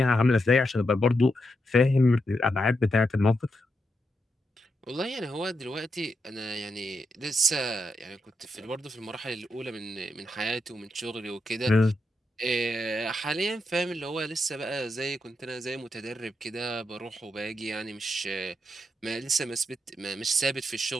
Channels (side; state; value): both; normal; correlation 0.84